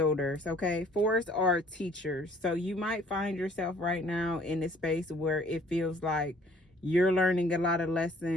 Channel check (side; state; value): both; normal; correlation 0.57